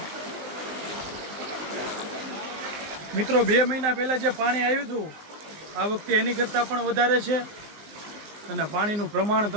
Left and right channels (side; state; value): left; late; 19 ms